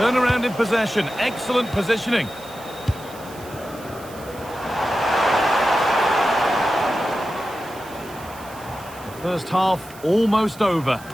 in possession. Excellent positioning. The first half almost over.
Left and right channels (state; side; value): noise; right; hiss, 20 dB below the sound